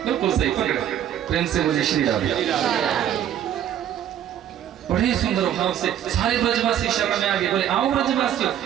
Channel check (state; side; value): quieter; left; 10.5 dB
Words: बिल्कुल सही पकड़े। प्रेम से मुझे श्री राम। बड़े सुंदर भाव से सारे ब्रजवासी शरण में आ गए। बोले आओ ब्रजवासियों,